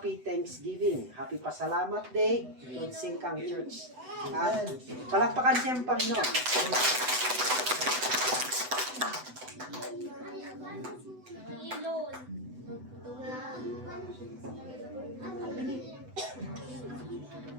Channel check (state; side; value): late; left; 8.0 ms